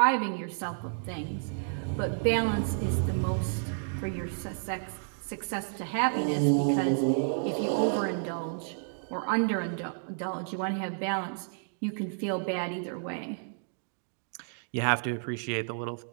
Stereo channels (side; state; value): left; silent; digital silence